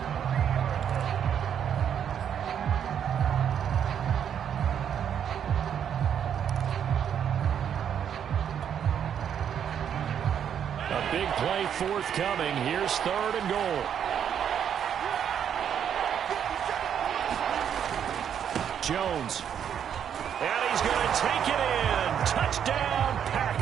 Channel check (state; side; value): quieter; left; 8.7 dB